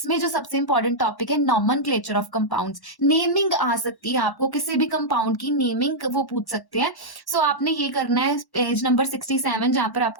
जो सबसे इंपॉर्टेंट टॉपिक है नॉमेनक्लेचर ऑफ कंपाउंड्स। नेमिंग आ सकती है, आपको किसी भी कंपाउंड की नेमिंग वो पूछ सकते हैं। सो आपने ये करना है पेज नंबर 67 जहां पर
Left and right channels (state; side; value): late; right; 1.1 ms